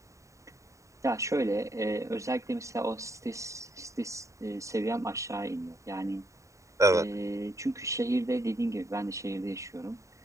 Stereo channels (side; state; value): left; late; 0.15 ms